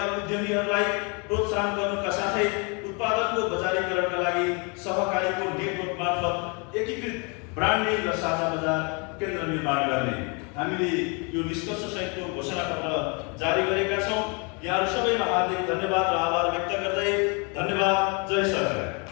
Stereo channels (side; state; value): right; quieter; 33.3 dB